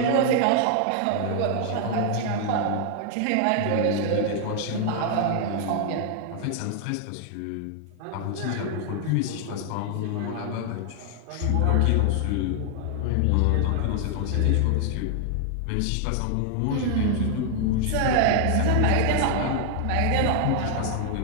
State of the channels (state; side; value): different; both; correlation 0.00